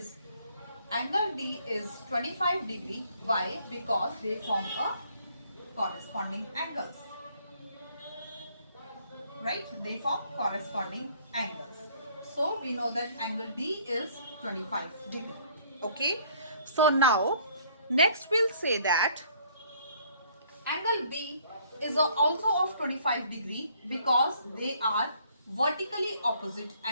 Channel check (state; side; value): inverted; both; correlation -0.61